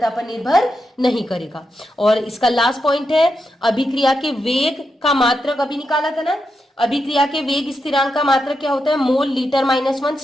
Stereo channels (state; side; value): normal; both; correlation 0.86